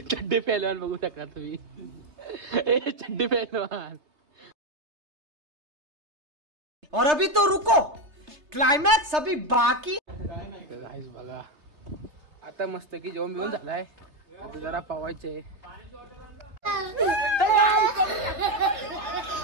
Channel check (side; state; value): left; late; 3.3 ms